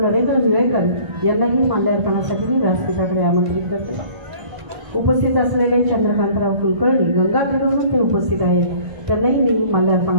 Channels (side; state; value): left; late; 1.1 ms